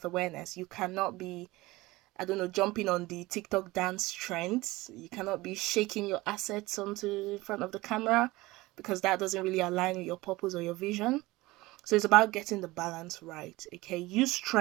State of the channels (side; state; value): left; quieter; 20.1 dB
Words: awareness, you cannot be, I don't know, jumping on the TikTok dance trends. You cannot be shaking your assets onto in front of the camera, because that doesn't really align with your purpose or your vision. So it's about getting the balance right. Okay, use